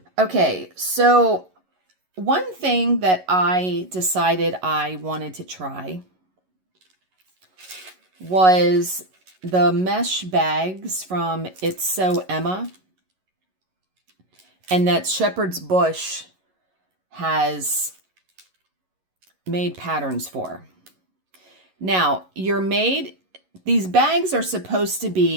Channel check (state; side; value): late; left; 11 ms